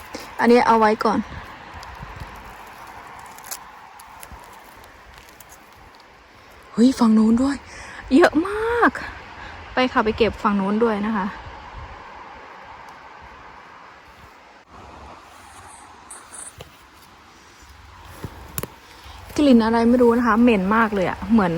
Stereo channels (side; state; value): both; identical; correlation 1.00